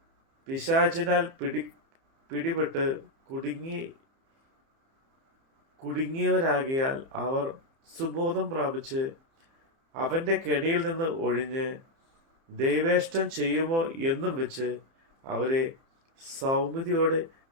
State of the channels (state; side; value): late; left; 30 ms